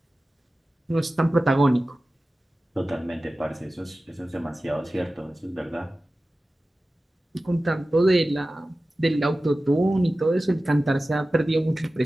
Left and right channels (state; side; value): normal; both; correlation 0.95